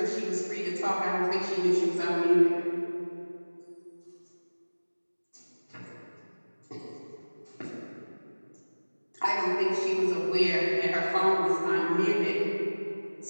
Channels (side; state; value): both; inverted; correlation -1.00